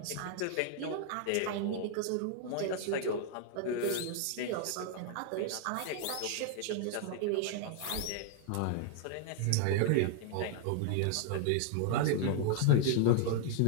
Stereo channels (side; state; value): both; different; correlation 0.00